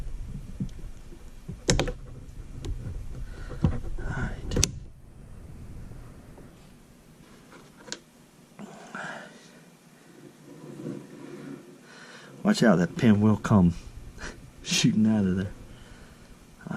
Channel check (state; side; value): identical; both; correlation 1.00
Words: Alright. Watch out, that pin will come shooting out of there.